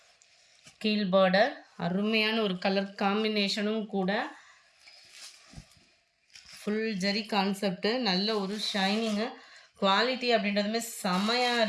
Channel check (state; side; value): identical; both; correlation 1.00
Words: கீழ் பார்டர் அருமையான ஒரு கலர் காம்பினேஷனும் கூட. ஃபுல் ஜரி கான்செப்ட்டு, நல்ல ஒரு ஷைனிங்கு, குவாலிட்டி அப்படின்றதுமே செமையாக